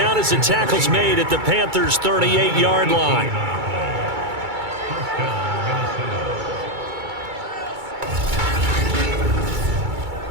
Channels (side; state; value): left; late; 2.3 ms